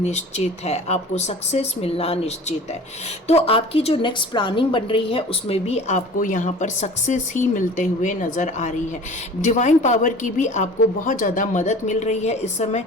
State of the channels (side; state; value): both; normal; correlation 0.42